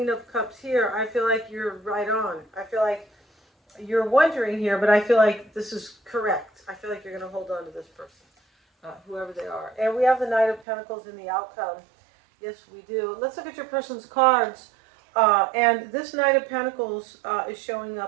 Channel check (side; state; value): left; drops out; at 10.7 s